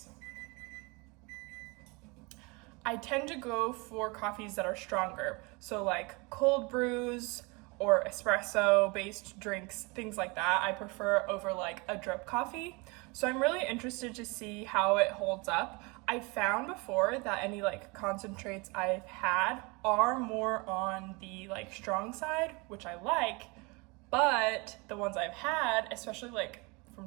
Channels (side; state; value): left; quieter; 27.9 dB